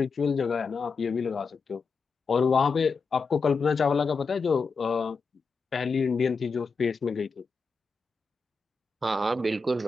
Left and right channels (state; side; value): quieter; right; 4.5 dB